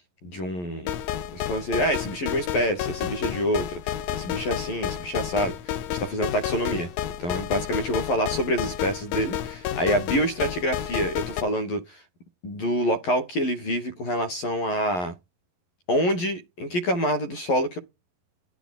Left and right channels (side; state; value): right; late; 11 ms